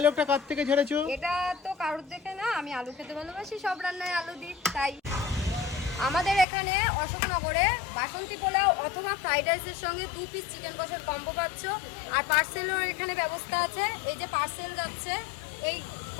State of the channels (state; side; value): drops out; right; at 6.5 s